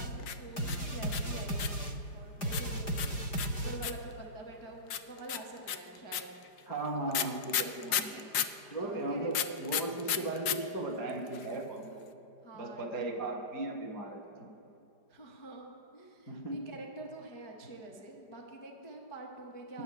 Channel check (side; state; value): right; late; 5.0 ms